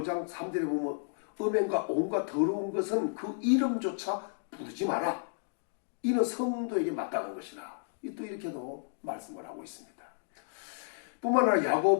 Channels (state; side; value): silent; right; digital silence